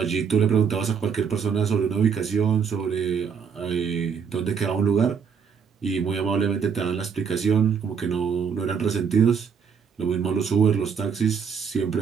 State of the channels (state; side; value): quieter; left; 6.5 dB